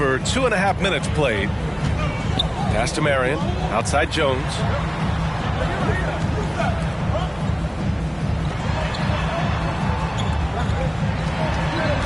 2.5 minutes played. Pass to Marion, outside Jones.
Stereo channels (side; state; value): both; identical; correlation 1.00